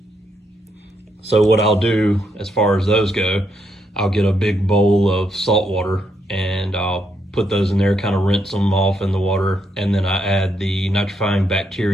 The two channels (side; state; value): both; normal; correlation 0.78